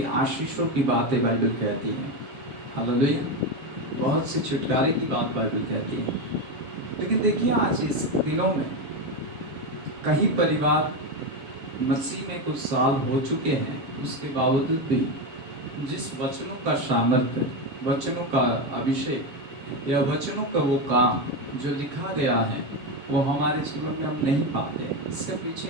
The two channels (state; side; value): late; left; 7.5 ms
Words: आशीषों की बातें बाइबल कहती है। हालेलुया। बहुत से छुटकारे की बात बाइबल कहती है। लेकिन देखिए आज इस दिनों में कई परिवार मसीह में कुछ साल हो चुके हैं, उसके बावजूद भी जिस वचनों का सामर्थ्य, वचनों का अभिषेक या वचनों का वो काम जो लिखा गया है वो हमारे जीवन में हम नहीं पाते। इसके पीछे